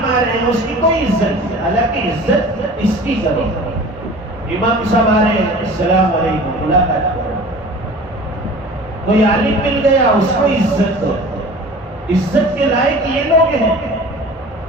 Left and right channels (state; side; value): normal; both; correlation 0.41